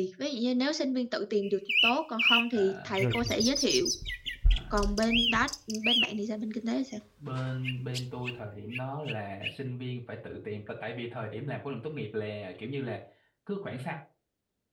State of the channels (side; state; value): both; identical; correlation 1.00